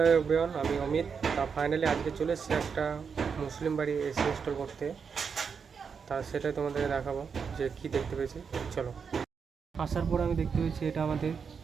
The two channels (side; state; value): left; quieter; 6.1 dB